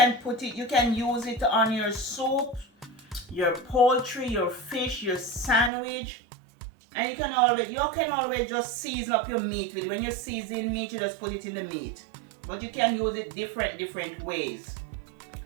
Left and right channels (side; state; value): left; drops out; at 5.7 s